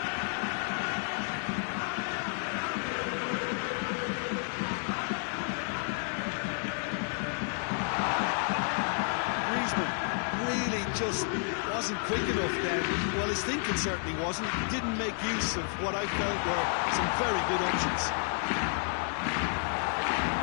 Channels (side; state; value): right; silent; 57 dB below the other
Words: Griezmann really just wasn't quick enough then. Well, his thinking certainly wasn't. Didn't make use of what I felt were some very good options.